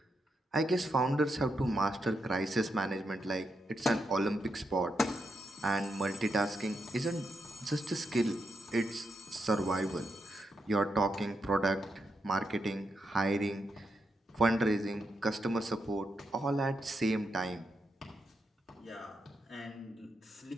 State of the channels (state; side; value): normal; both; correlation 0.83